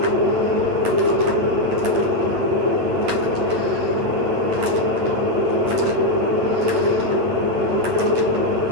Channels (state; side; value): late; left; 8.6 ms